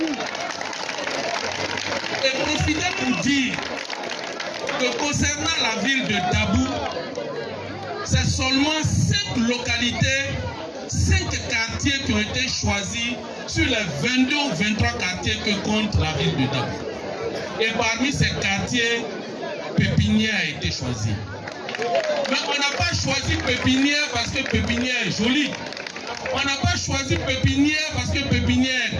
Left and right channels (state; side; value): identical; both; correlation 1.00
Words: Et profitez pour dire que concernant la ville de Dabou, c'est seulement 5 localités, 5 quartiers qui ont été choisis sur les 22 ou 23 quartiers que compte la ville de Dabou. Et parmi ces quartiers, Pépinière a été choisi. Mais on n'a pas choisi Pépinière parce que Pépinière est jolie. On n'a pas choisi Pépinière parce que Pépinière